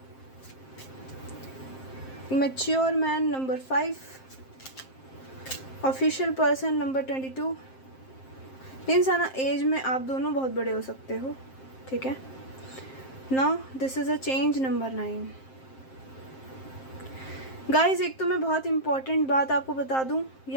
mature man number 5, official person number 22। इंसान एज में आप दोनों बहुत बड़े हो सकते हो, ठीक है। Now this is a change number 9। Guys एक तो मैं बहुत इंपॉर्टेंट बात आपको बता दूं,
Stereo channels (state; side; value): late; right; 7.6 ms